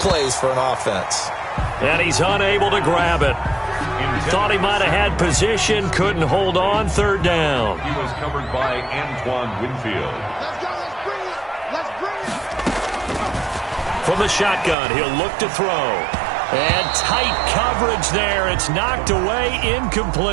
for an offense. And he's unable to grab it. Thought he might have had position, couldn't hold on, 3rd down. He was covered by Antoine Winfield. Let's go, let's bring it, let's bring it. From the shotgun, he'll look to throw. And tight coverage there. It's knocked away,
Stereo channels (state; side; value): drops out; left; at 14.8 s